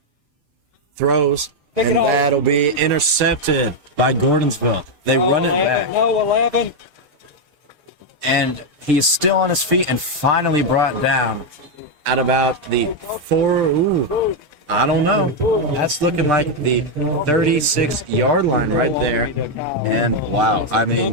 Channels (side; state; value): left; late; 6.8 ms